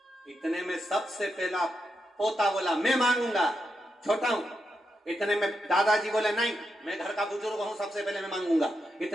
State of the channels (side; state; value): both; normal; correlation 0.85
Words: इतने में सबसे पहला पोता बोला, मैं मांगूंगा, छोटा हूं। इतने में दादाजी बोले, नहीं मैं घर का बुजुर्ग हूं, सबसे पहले मैं मांगूंगा।